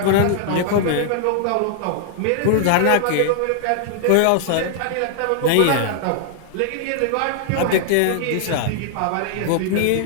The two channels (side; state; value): both; different; correlation -0.01